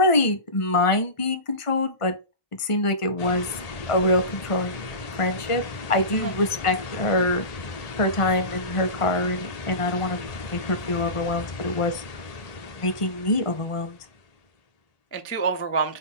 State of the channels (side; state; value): right; late; 1.4 ms